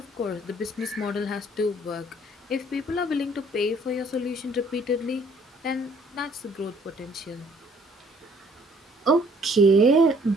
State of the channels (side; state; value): both; normal; correlation 0.60